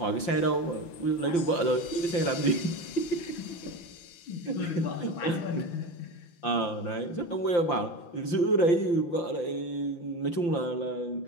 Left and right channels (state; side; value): late; right; 5.8 ms